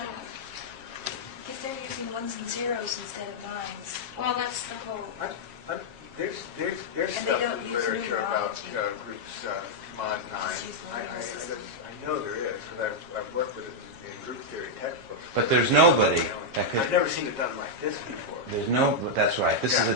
Because they're using ones and zeros instead of nines. Well, that's the whole. There's And they stuff don't in use literature about numerology. groups mod 9. Just use the I numeral system. know there is, because I've worked with it in group theory textbooks. But there's nobody that I've could... never seen it done like this before. There's no... That's right. This is a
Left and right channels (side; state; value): left; late; 7.4 ms